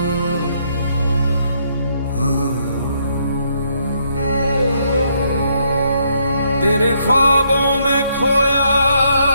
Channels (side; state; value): both; inverted; correlation -0.73